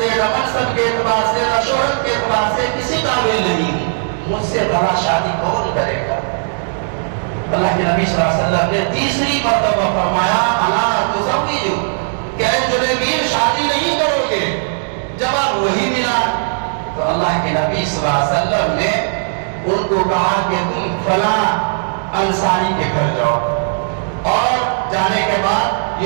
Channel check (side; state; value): left; silent; digital silence